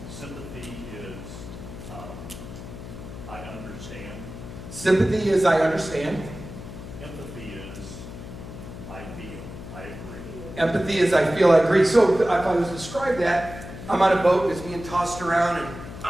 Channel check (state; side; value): noise; left; hum, 12 dB below the sound